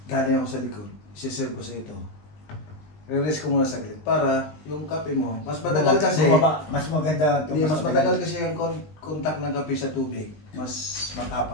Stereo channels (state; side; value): late; right; 19 ms